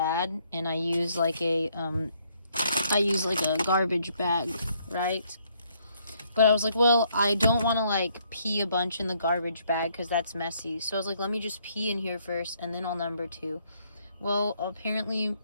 and I use like a garbage bag, right? But I was like, well, I don't want to like pee a bunch in the garbage bag because that's messy. So I was like, let me just pee in here first, and then I'll number 2. Well, apparently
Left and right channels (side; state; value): both; inverted; correlation -0.69